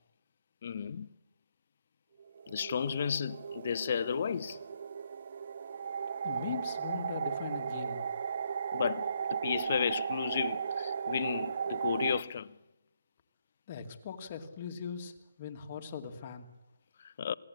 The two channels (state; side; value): inverted; both; correlation -0.73